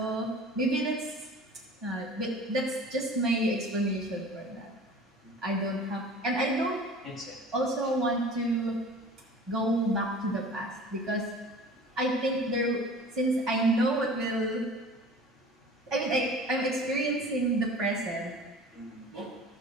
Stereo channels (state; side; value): normal; both; correlation 0.43